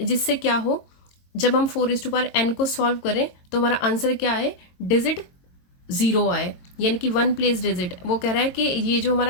क्या हो, जब हम 4n को सॉल्व करें तो हमारा आंसर क्या है, डिजिट 0 आए, यानी कि 1 प्लेस डिजिट। वो कह रहा है कि ये जो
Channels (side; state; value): right; late; 22 ms